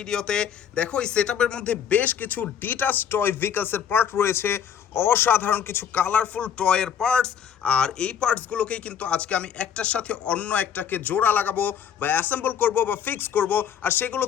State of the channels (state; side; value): quieter; right; 8.2 dB